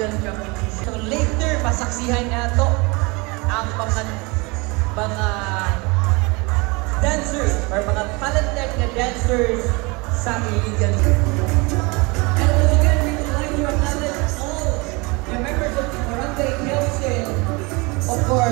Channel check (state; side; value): quieter; left; 27.0 dB